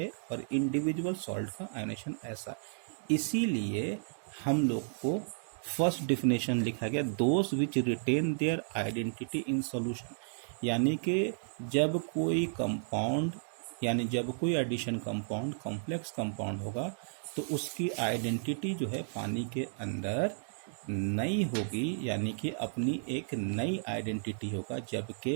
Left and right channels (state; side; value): silent; left; digital silence